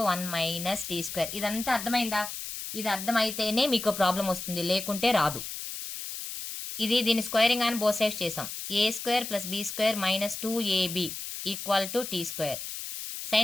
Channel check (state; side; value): noise; left; hiss, 7 dB below the sound